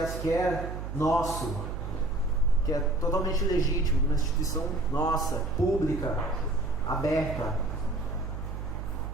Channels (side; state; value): right; noise; hum, 6 dB below the sound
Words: que é nosso, que é totalmente legítimo, uma instituição nossa, pública, aberta.